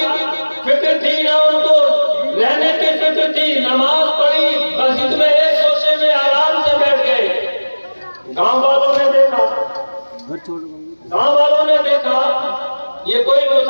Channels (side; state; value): both; inverted; correlation -1.00